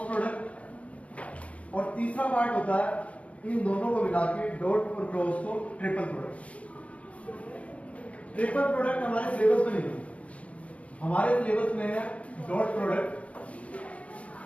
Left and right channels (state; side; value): late; right; 0.064 ms